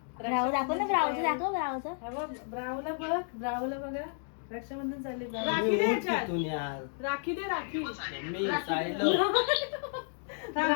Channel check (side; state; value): right; silent; 56 dB below the other